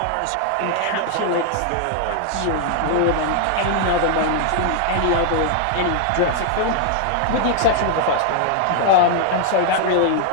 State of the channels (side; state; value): both; different; correlation 0.00